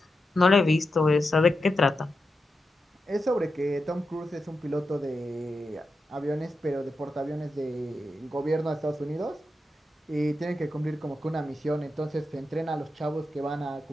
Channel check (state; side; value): normal; both; correlation 0.89